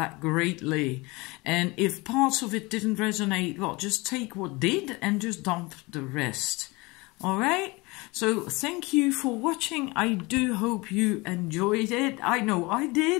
greatly. And if parts of it didn't resonate, well, just take what did and just dump the rest. All right? So thank you for watching. I do hope you enjoyed it. I know I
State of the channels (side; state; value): right; quieter; 24.3 dB